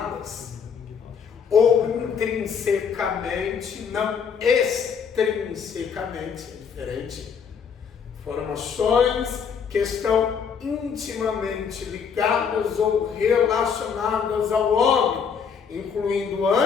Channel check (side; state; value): right; quieter; 6.6 dB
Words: ou intrinsecamente, não extrinsecamente, é diferente. Informações que estão intimamente ligadas ou relacionadas ao homem, incluindo